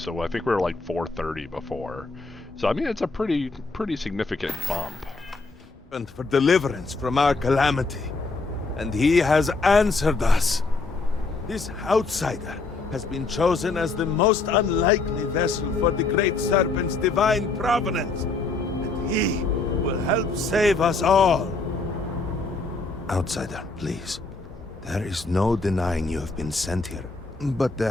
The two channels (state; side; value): quieter; right; 3.7 dB